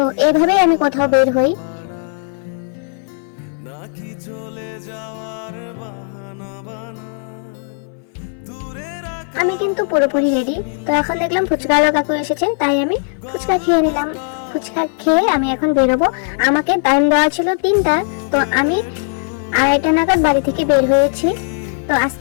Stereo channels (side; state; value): right; silent; 60 dB below the other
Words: এইভাবেই আমি কোথাও বের হই। আমি কিন্তু পুরোপুরি রেডি। তো এখন দেখলাম ফুচকা কাকু এসেছে, তাই আমি ফুচকা খেয়ে নিলাম। ফুচকা খেয়ে আমি এখন বেরোবো। আমাকে টাইম দেওয়া ছিল 3টা, তো আমি 2:30 নাগাদ বাড়ি থেকে বের হয়েছি। তো